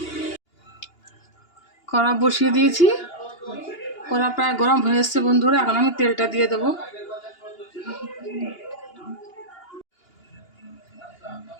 কড়া বসিয়ে দিয়েছি, কড়া প্রায় গরম হয়ে এসছে বন্ধুরা। এখন আমি তেলটা দিয়ে দেবো।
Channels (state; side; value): late; right; 2.8 ms